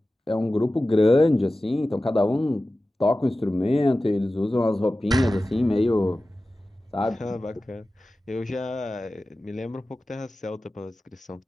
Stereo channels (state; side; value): normal; both; correlation 0.95